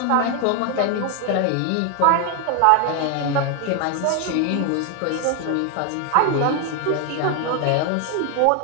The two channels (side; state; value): both; different; correlation 0.01